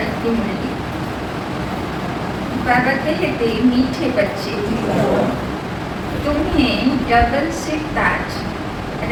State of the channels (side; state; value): both; identical; correlation 1.00